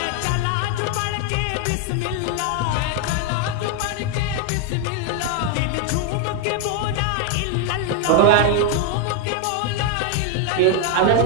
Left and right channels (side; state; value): both; different; correlation 0.00